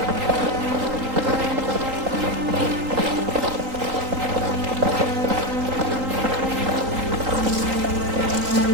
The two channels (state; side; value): late; left; 3.8 ms